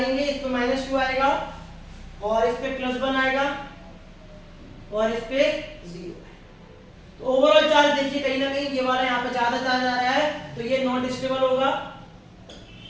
इस पे -2 आएगा और इस पे +1 आएगा और इस पे 0। तो ओवरऑल चार्ज देखिए कहीं ना कहीं ये वाला यहाँ पे ज्यादा चार्ज आ रहा है तो ये नॉन स्टेबल होगा,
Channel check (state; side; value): identical; both; correlation 1.00